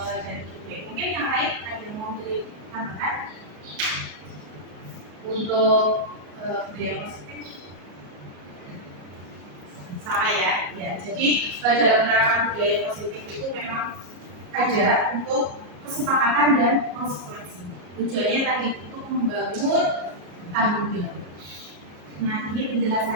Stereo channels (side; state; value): left; late; 33 ms